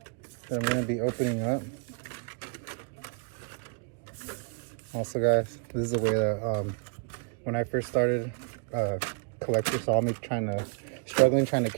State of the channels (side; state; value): left; quieter; 39.7 dB